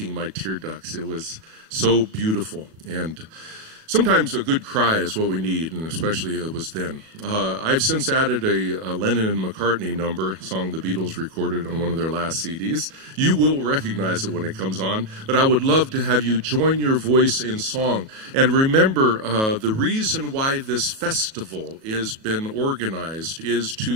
my tear ducts. It was so beautiful. And sometimes a good cry is what we need, and especially it was then. I've since added a Lennon and McCartney number, a song the Beatles recorded on one of their last CDs. You will recognize it when it comes on, but I would love to have you join your voice in song. And remember, the reason why this festival has been organized is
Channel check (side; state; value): left; late; 37 ms